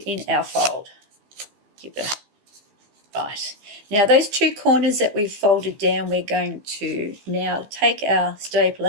in our fold. Right. Now those two corners that we've folded down, we're going to now take our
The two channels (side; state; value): left; late; 15 ms